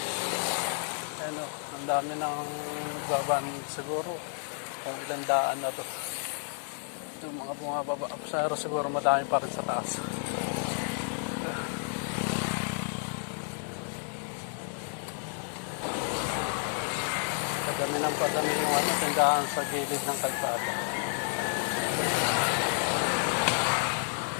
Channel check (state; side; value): silent; right; 57 dB below the other